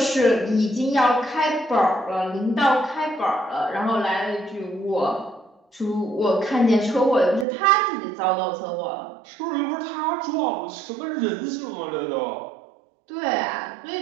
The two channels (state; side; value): drops out; left; at 7.5 s